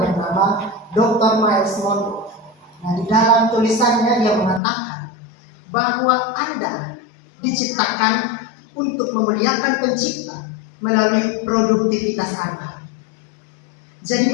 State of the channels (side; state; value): right; drops out; at 4.6 s